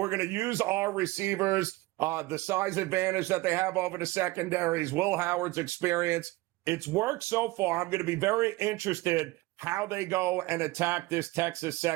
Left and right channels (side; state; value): left; quieter; 20.6 dB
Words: use our receivers, the size advantage that they have over the secondaries, Will Howard's experience. It's worked so far. I'm going to be very interested how they go and attack this Texas